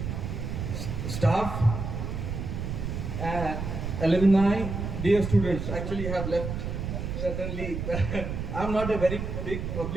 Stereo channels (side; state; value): right; noise; rumble, 4 dB below the sound